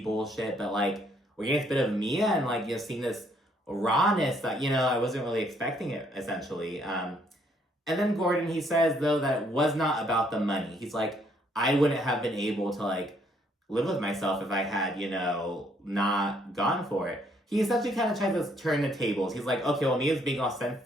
bullshit. But like we're getting a bit of Mia and like, seeing this rawness that, I wasn't really expecting it essentially. And then Gordon, he says though that it was not about the money. He's like, I wouldn't have been able to like live with myself if I had, not gone for it. He essentially kind of tried to turn the tables. He's like, okay, well, Mia's being all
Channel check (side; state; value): both; normal; correlation 0.68